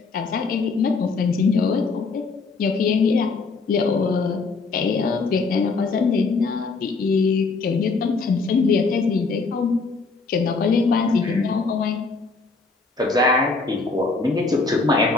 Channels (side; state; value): right; quieter; 4.1 dB